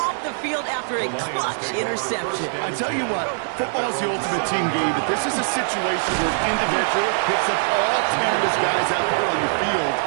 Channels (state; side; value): silent; left; digital silence